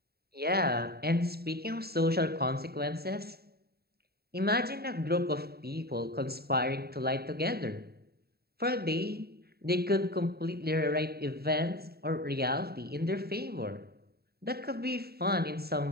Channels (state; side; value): late; left; 0.46 ms